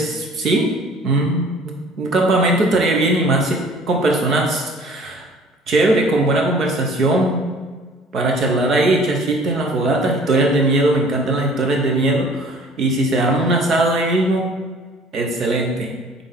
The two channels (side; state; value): both; normal; correlation 0.51